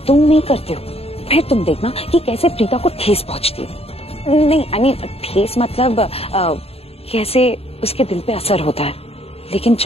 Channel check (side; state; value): right; late; 0.29 ms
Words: तुम नहीं करते हो। फिर तुम देखना कि कैसे प्रीता को ठेस पहुंचती है। नहीं, आई मीन ठेस मतलब कैसे उसके दिल पे असर होता है। लेकिन